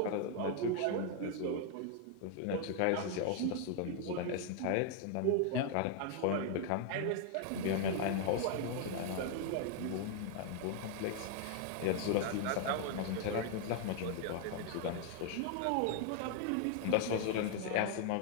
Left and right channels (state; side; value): different; both; correlation 0.00